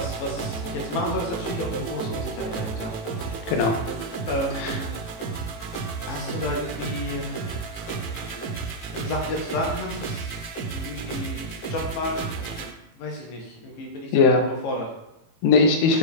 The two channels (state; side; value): late; right; 18 ms